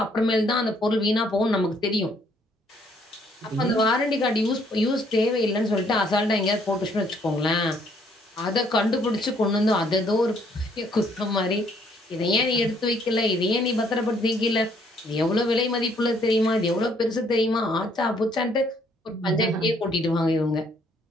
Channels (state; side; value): normal; both; correlation 0.66